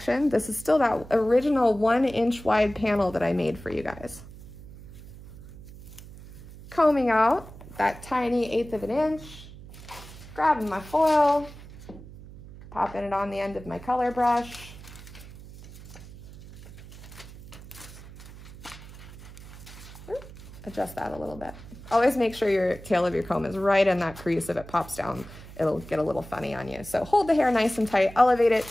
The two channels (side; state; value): right; noise; hum, 16 dB below the sound